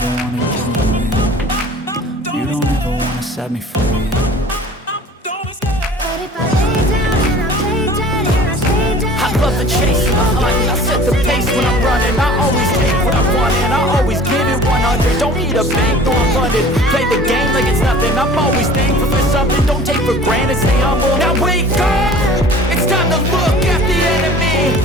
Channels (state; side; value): normal; both; correlation 0.45